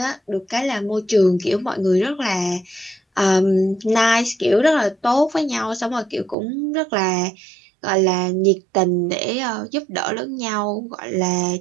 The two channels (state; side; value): drops out; left; at 6.4 s